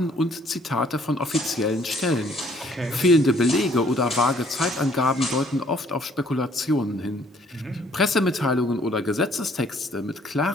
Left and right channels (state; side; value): normal; both; correlation 0.61